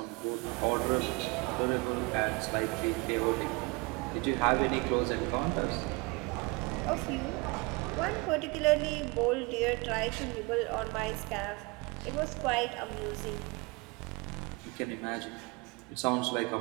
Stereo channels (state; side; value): quieter; left; 27.8 dB